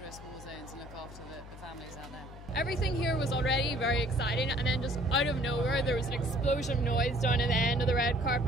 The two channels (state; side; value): noise; left; hum, 15 dB below the sound